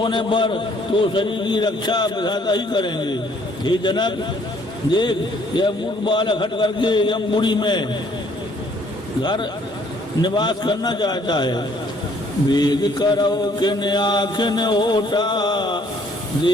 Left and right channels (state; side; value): normal; both; correlation 0.62